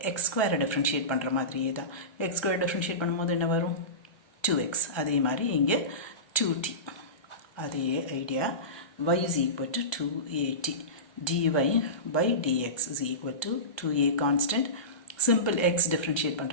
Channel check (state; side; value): late; right; 1.2 ms